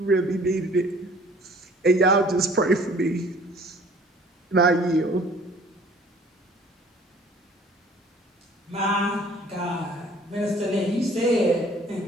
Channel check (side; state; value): both; normal; correlation 0.53